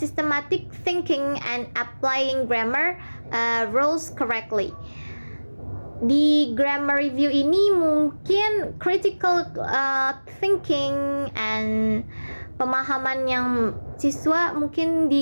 thinking and applying grammar rules correctly. Di grammar review ini mungkin critical thinking and pemahaman yang siswa mungkin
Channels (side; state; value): both; inverted; correlation -1.00